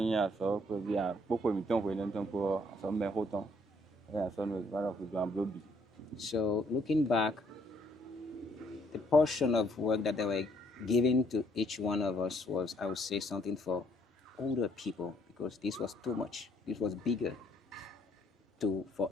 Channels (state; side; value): normal; both; correlation 0.67